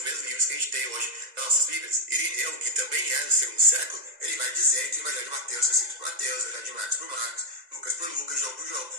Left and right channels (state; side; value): late; left; 2.0 ms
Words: mesmos livros que a gente tem hoje nas nossas Bíblias. Irineu, que também é do 2º século, ele vai dizer que o Evangelho de Mateus é escrito por Mateus, o Evangelho de Marcos por Marcos, Lucas por Lucas, João por João.